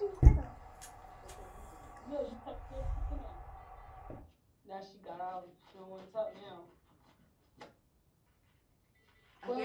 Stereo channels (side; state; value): both; identical; correlation 1.00